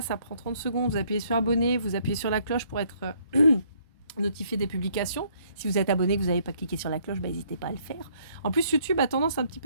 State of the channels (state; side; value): inverted; both; correlation -0.66